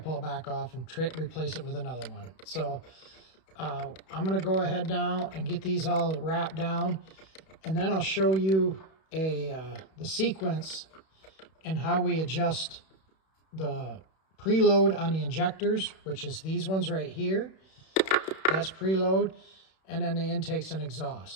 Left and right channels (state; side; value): late; right; 31 ms